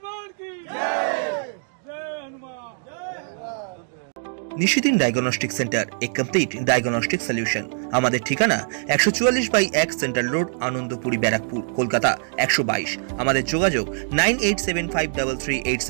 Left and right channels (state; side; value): silent; left; digital silence